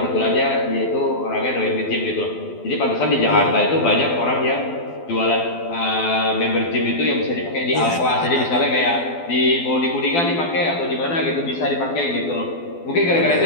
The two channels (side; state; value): right; late; 12 ms